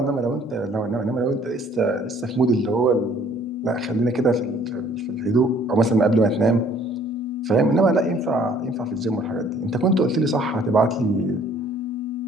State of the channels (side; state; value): both; normal; correlation 0.58